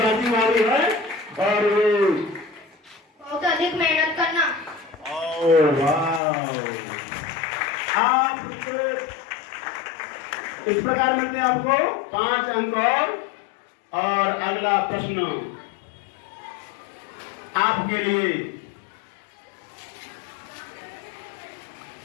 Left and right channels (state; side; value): drops out; right; at 6.2 s